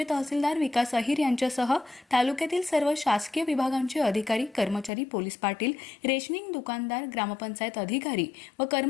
तहसीलदार विकास अहिर यांच्यासह तालुक्यातील सर्व शासकीय विभागांचे अधिकारी, कर्मचारी, पोलीस पाटील, रेशनिंग दुकानदार, ग्रामपंचायत अधिकारी व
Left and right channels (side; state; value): right; drops out; at 4.9 s